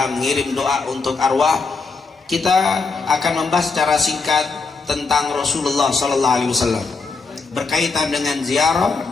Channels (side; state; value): right; quieter; 4.4 dB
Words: mengirim doa untuk arwah, kita akan membahas secara singkat tentang Rasulullah sallallahu alaihi wasallam berkaitan dengan